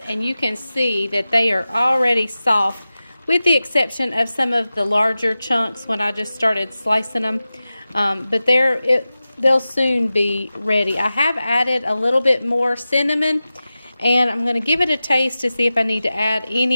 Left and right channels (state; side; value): inverted; both; correlation -0.95